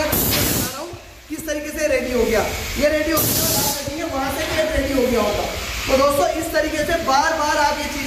दिखा रहा हूँ किस तरीके से रेडी हो गया। ये रेडी हो गया, वहां से ये रेडी हो गया होगा। तो दोस्तों इस तरीके से बार बार आप ये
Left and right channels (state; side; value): identical; both; correlation 1.00